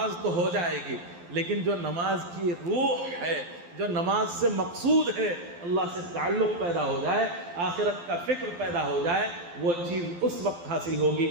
تو ہو جائے گی، لیکن جو نماز کی روح ہے، جو نماز سے مقصود ہے، اللہ سے تعلق پیدا ہو جائے، آخرت کا فکر پیدا ہو جائے، وہ چیز اس وقت حاصل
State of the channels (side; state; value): left; late; 12 ms